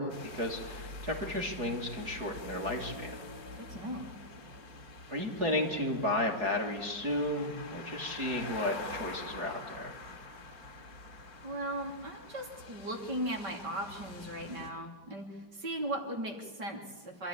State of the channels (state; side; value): late; left; 5.2 ms